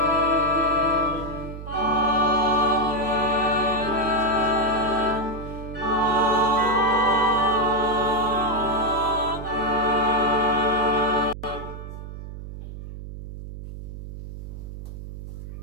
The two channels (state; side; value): noise; right; hum, 11 dB below the sound